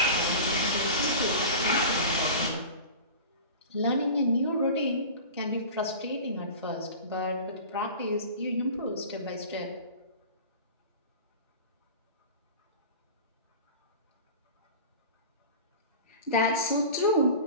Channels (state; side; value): inverted; both; correlation -0.35